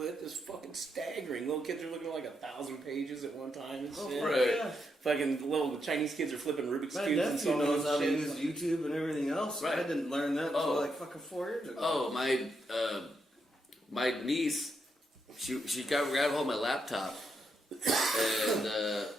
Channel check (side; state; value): both; normal; correlation 0.81